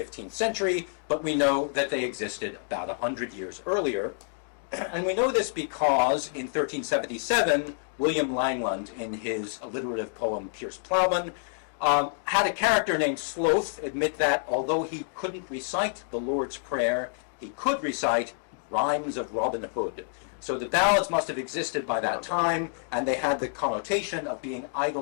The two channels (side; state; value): right; silent; digital silence